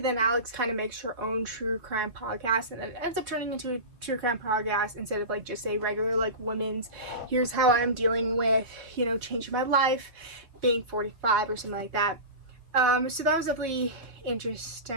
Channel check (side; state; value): left; late; 4.3 ms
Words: Alex kind of makes her own true crime podcast, and then it ends up turning into a true crime podcast instead of like just a regular like women's, here's how I'm dealing with, you know, changing my life, being 45 or something like that. So that was definitely